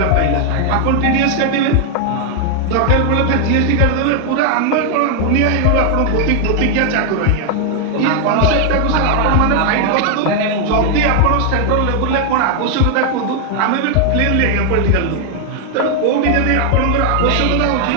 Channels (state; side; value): different; both; correlation 0.00